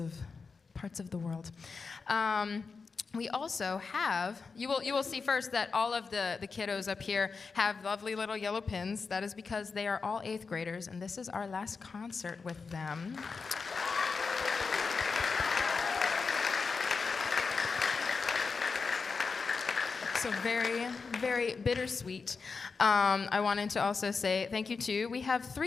the world. we also have, you will see first that all of the kiddos up here have lovely little yellow pins. That is because they are all 8th graders, and this is our last concert with them. So very, very bittersweet. I wanted to also say thank you to, we have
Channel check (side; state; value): right; quieter; 4.8 dB